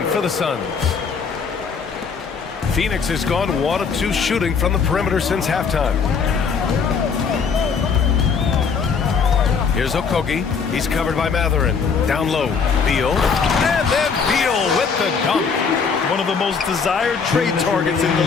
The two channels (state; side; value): quieter; right; 5.7 dB